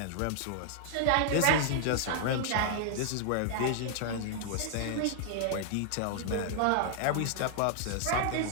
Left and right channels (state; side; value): different; both; correlation -0.01